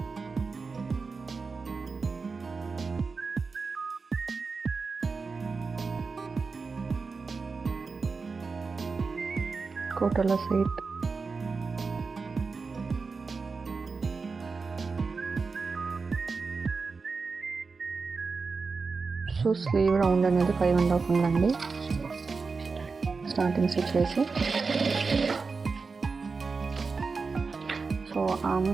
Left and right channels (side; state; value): left; quieter; 4.5 dB